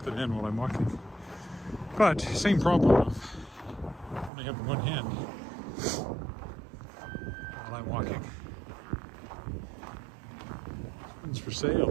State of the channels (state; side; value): drops out; left; at 4.3 s